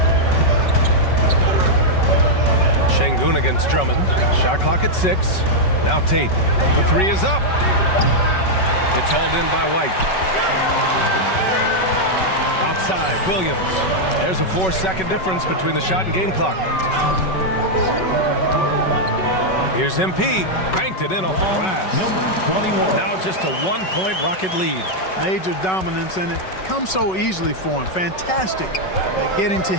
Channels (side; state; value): right; late; 5.3 ms